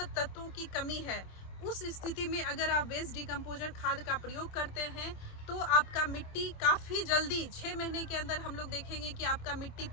तत्वों की कमी है, उस स्थिति में अगर आप वेस्ट डिकम्पोजर खाद का प्रयोग करते हैं तो आपका मिट्टी काफ़ी जल्दी 6 महीने के अंदर हम लोग देखेंगे कि आपका मिट्टी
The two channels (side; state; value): right; late; 27 ms